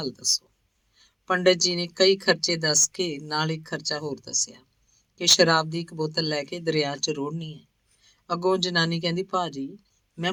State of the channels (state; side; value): identical; both; correlation 1.00